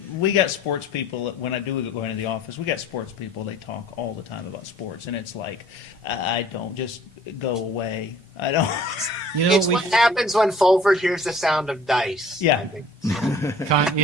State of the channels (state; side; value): normal; both; correlation 0.52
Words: We got sports people. When I do go into the office, we got sports people. They talk all the time about sports, and it's like, I don't just go away. I don't. You know, It's what happens when Fulford hears the sound of dice. Yeah. I think.